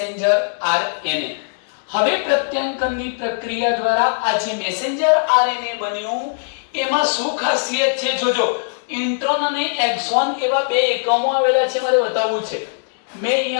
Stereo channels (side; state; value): right; silent; digital silence